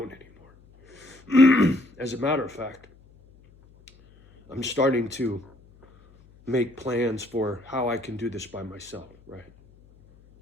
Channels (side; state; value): left; noise; hum, 27 dB below the sound